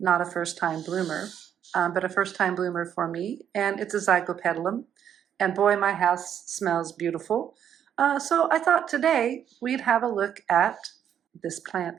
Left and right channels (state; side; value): quieter; left; 9.2 dB